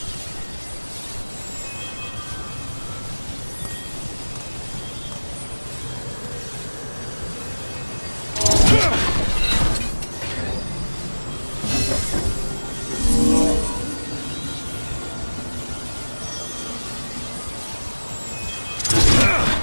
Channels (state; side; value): inverted; both; correlation -1.00